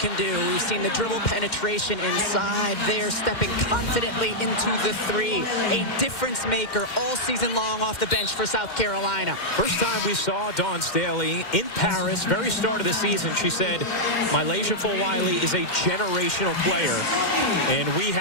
do. We've seen the dribble penetration inside there, stepping confidently into the three. A difference maker all season long off the bench for South Carolina. First time we saw Dawn Staley in Paris, very start of the season, she said, Mylasia Fulwiley is a generational player. And we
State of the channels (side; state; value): right; late; 2.1 ms